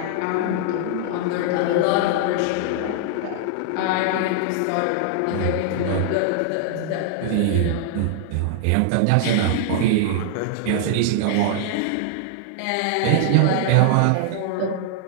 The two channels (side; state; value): both; different; correlation -0.01